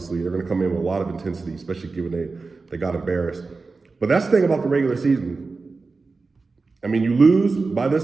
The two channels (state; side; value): quieter; left; 4.1 dB